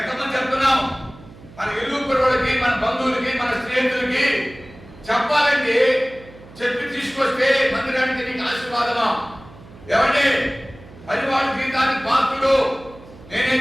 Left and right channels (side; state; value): right; noise; hum, 20 dB below the sound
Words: ఎంతమంది చెప్తున్నాం? మన ఇల్లు కుర్రోళ్ళకి, మన బంధువులకి, మన స్నేహితులకి చెప్పాలండి. చెప్పి తీసుకొస్తే మందిరానికి నీకు ఆశీర్వాదమా? ఏమండి, పరివాళ్ళ జీవితానికి పాత్రుడు.